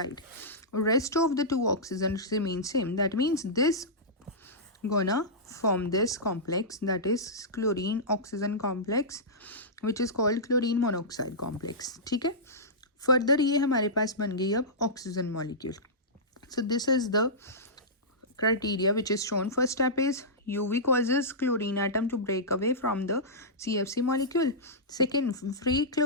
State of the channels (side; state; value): both; normal; correlation -0.15